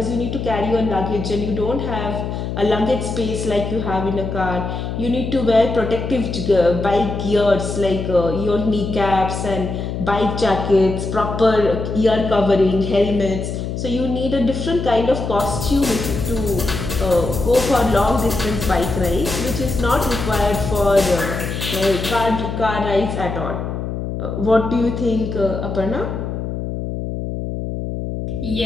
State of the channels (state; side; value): noise; left; hum, 5 dB below the sound